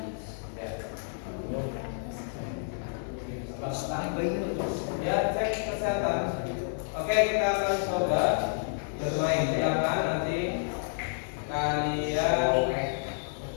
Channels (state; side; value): silent; right; digital silence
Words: Ya, cek kesehatan. Oke, kita akan coba bermain. Silakan nanti kalian